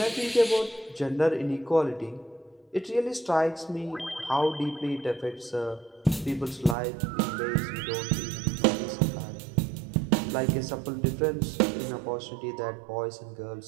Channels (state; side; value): drops out; left; at 6.8 s